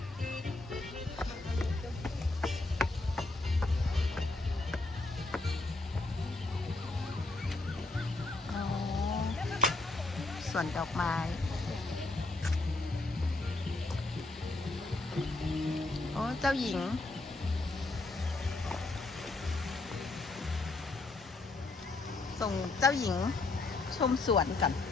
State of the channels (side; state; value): right; quieter; 3.1 dB